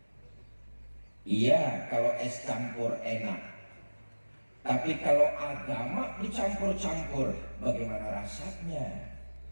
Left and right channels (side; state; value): both; inverted; correlation -1.00